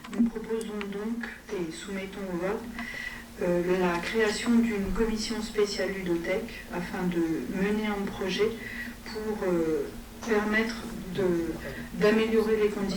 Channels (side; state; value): both; identical; correlation 1.00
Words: Nous proposons donc, et soumettons au vote, la création d'une commission spéciale ludothèque afin de mener un projet pour permettre d'améliorer les